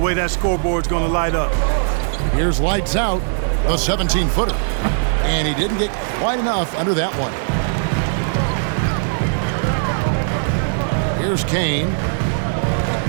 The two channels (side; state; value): left; silent; 56 dB below the other